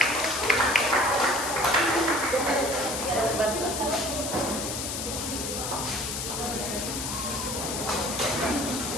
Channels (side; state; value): left; noise; hiss, 4 dB below the sound